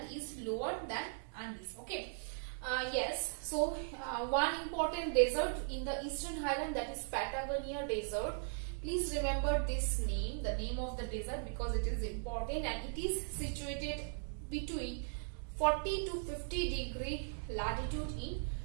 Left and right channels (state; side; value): silent; left; digital silence